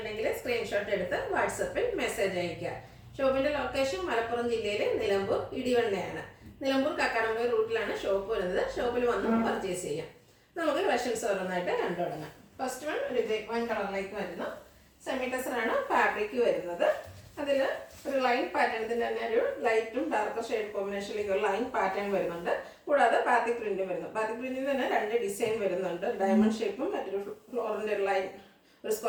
സ്ക്രീൻഷോട്ട് എടുത്ത് വാട്സപ്പിൽ മെസ്സേജ് അയയ്ക്കുക. ഷോപ്പിന്റെ ലൊക്കേഷൻ മലപ്പുറം ജില്ലയിലെ നിലമ്പൂർ ഇടിവണ്ണയാണ്. നിലമ്പൂർ കക്കാടംപൊയിൽ റൂട്ടിലാണ് ഷോപ്പ് വരുന്നത്. ഷോപ്പിൽ വന്ന് പർച്ചേസ് ചെയ്യാം. നമുക്ക് കളക്ഷൻസ് ഓരോന്നായിട്ട് കണ്ടു തുടങ്ങാം. ഫസ്റ്റ് വൺ ഒരു വൺ കളറിലേക്ക് വരുന്നു. സെമി ടെസർ ആണ് ഫാബ്രിക് വരുന്നത്. അതിൽ ഒരു ലൈൻ പാറ്റേൺ, ഇതിൻ്റെ തന്നെ ഒരു ലൈറ്റും ഡാർക്കർ ഷെയ്ഡ് കോമ്പിനേഷനിലേക്ക് ഒരു ലൈൻ പാറ്റേൺ വരുന്നുണ്ട്. കൂടാതെ ബാത്തിക് പ്രിന്റും വരുന്നു. ബാത്തിക് പ്രിന്റിൽ തന്നെ രണ്ട് ഡിസൈൻ വരുന്നുണ്ട്. ഡയമണ്ട് ഷേപ്പും മറ്റൊരു ഫ്ലോറിൻ്റെ ഒരു ലൈൻ, ഒരു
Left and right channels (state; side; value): identical; both; correlation 1.00